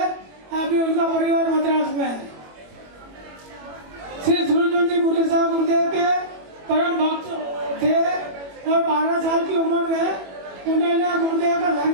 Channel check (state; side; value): late; left; 22 ms